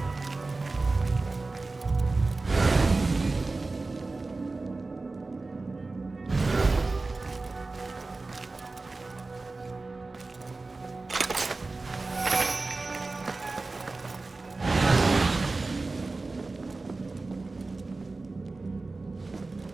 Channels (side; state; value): left; quieter; 3.5 dB